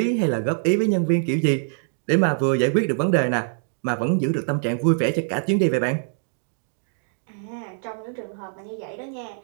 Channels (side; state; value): left; silent; digital silence